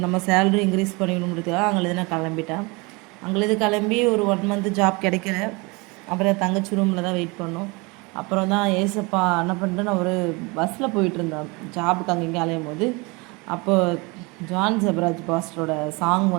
நம்ம சேலரி இன்க்ரீஸ் பண்ணிக்கணுங்கிறதுக்காக அங்கே நான் கிளம்பிட்டேன். அங்கே கிளம்பி ஒரு 1 மந்த் ஜாப் கிடைக்கல. அப்புறம் தங்கச்சி ரூமில் தான் வெயிட் பண்ணோம். அப்புறம் தான் ஏசப்பா என்ன பண்ணிட்டு நான் ஒரு பஸ்ஸில் போயிட்டு இருந்தேன் ஜாபுக்கு அங்கே அலையும் போது. அப்போ ஜான் ஜெபராஜ் பாஸ்டரோட சாங்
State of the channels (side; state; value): left; quieter; 27.0 dB